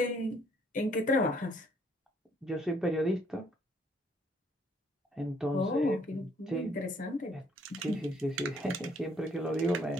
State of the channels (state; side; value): normal; both; correlation 0.65